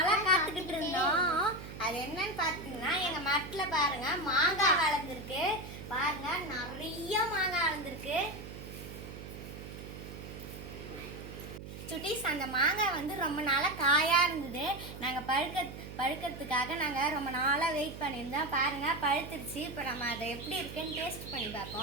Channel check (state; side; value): noise; right; hum, 11 dB below the sound